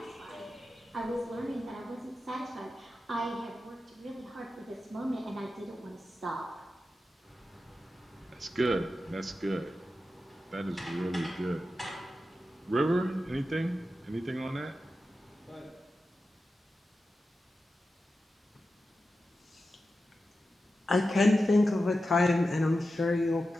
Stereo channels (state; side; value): normal; both; correlation 0.91